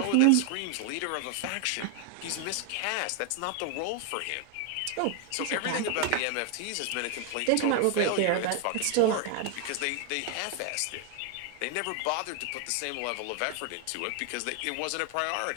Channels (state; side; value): different; both; correlation 0.00